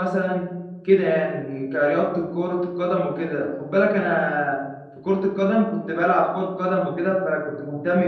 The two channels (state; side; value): identical; both; correlation 1.00